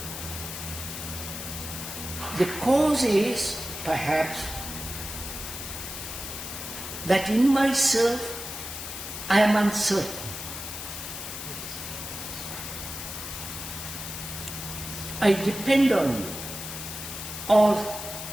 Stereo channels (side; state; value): left; noise; hiss, 8 dB below the sound